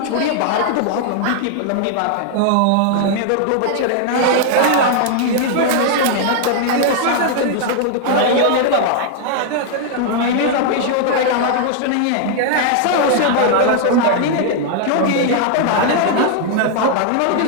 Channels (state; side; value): different; both; correlation 0.00